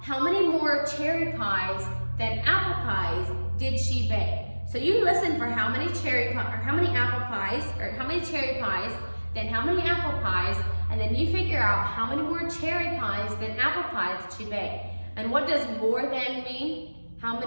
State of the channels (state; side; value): inverted; both; correlation -1.00